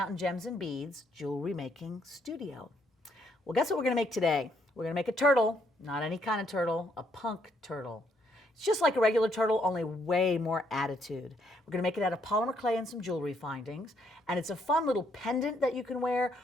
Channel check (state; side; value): normal; both; correlation 0.72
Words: Gems and Beads Jewelry Making Studio. Well, guess what we're going to make today? We're going to make a turtle, not any kind of turtle, a punk turtle. It's just like a regular turtle, only way more attitude. We're going to make it out of polymer clay and some jewelry findings, and it's a fun little pendant that you can wear,